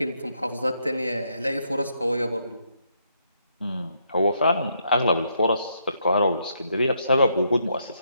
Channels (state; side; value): inverted; both; correlation -0.76